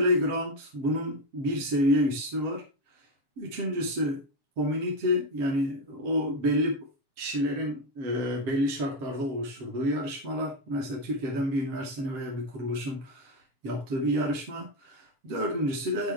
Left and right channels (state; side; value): late; left; 7.5 ms